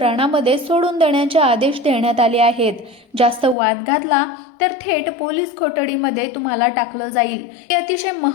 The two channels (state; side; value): drops out; right; at 3.6 s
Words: सोडून देण्याचे आदेश देण्यात आले आहेत. जास्त वाद घातला तर थेट पोलीस कोठडीमध्ये तुम्हाला टाकलं जाईल. ही अतिशय